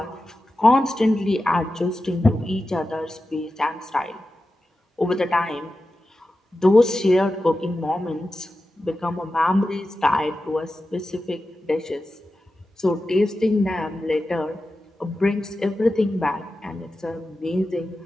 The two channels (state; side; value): normal; both; correlation 0.92